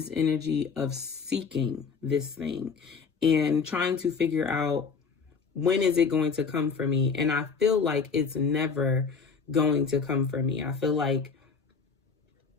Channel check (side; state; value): right; quieter; 5.5 dB